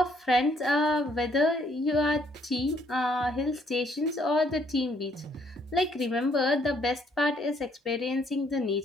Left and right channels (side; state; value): both; normal; correlation 0.68